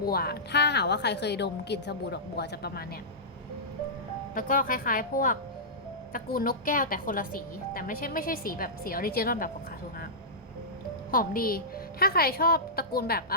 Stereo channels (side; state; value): both; normal; correlation -0.14